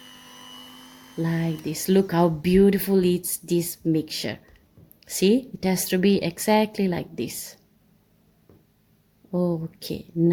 like this. Look how beautiful it's this mixture. See, it has to be exactly like this. Okay,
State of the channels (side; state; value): both; identical; correlation 1.00